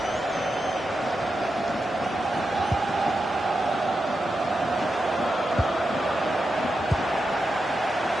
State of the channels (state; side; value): normal; both; correlation 0.88